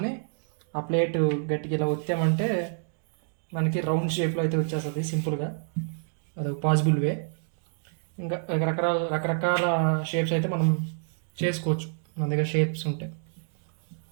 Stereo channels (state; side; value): silent; left; digital silence